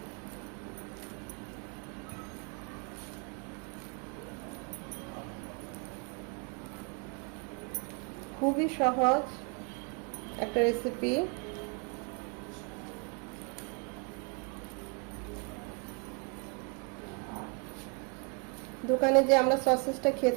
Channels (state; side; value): quieter; left; 33.9 dB